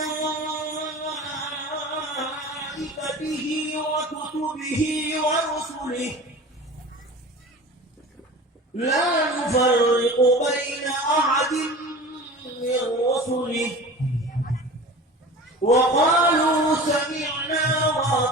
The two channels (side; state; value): both; normal; correlation 0.37